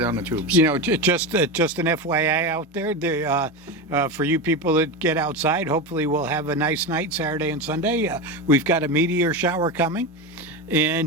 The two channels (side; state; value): both; normal; correlation 0.19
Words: the tubes. Just an FYI out there, for you people that get outside, hopefully we'll have a nice night Saturday and Sunday. We've got a meteor shower coming.